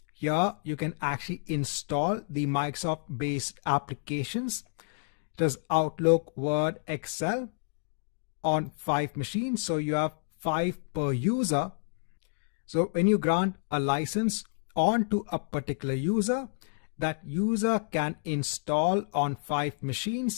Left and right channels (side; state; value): right; silent; digital silence